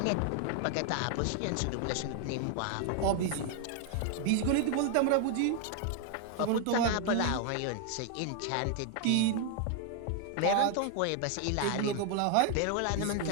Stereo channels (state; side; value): different; both; correlation 0.00